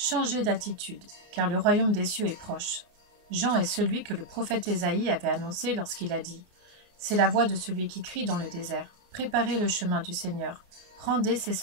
d'attitude, car le royaume des cieux est proche. Jean est celui que le prophète Ésaïe avait annoncé lorsqu'il a dit : C'est la voix de celui qui crie dans le désert. Préparez le chemin du Seigneur, rendez ses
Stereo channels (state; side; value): late; left; 29 ms